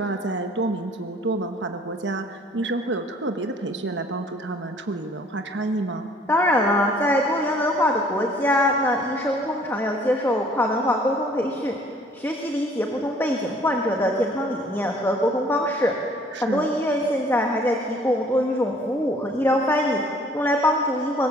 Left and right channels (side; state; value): both; normal; correlation 0.57